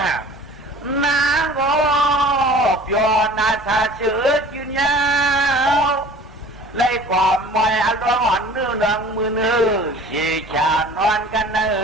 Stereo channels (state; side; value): normal; both; correlation 0.45